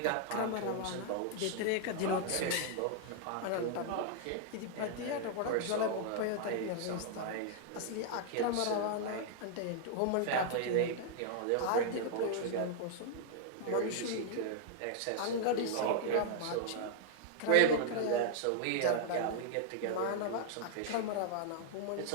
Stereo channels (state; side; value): different; both; correlation 0.00